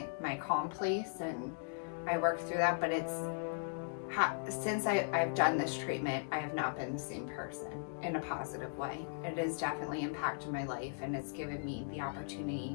calm place and I work through that. But since I've done this treatment, I have not been the same person in a positive way. It has definitely impacted my life, and it's given me the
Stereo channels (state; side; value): silent; right; digital silence